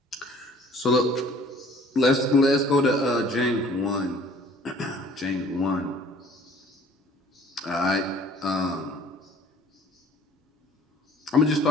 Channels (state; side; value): normal; both; correlation 0.52